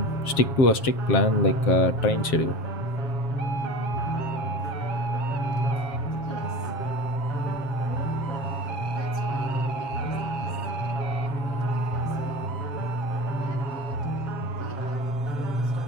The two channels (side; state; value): right; late; 7.4 ms